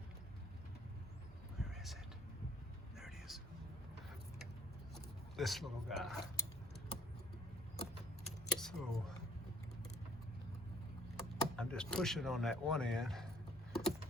Where is it? There it is. This little guy. So I'm just pushing on that one end,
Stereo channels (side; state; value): both; normal; correlation 0.57